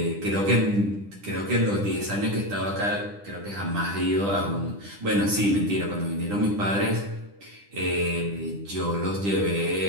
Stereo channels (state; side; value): late; left; 10 ms